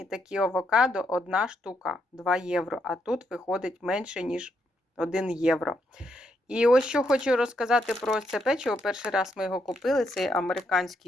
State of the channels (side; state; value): both; normal; correlation 0.78